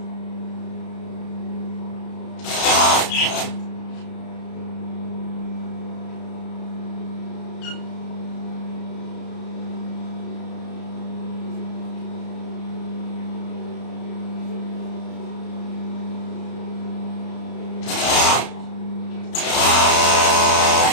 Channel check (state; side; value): late; right; 32 ms